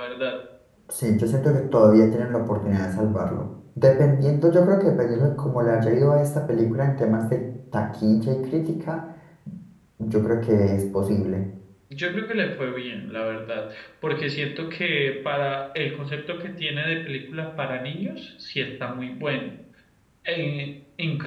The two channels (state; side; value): identical; both; correlation 1.00